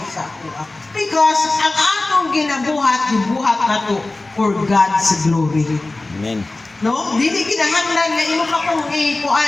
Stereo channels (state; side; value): quieter; right; 3.0 dB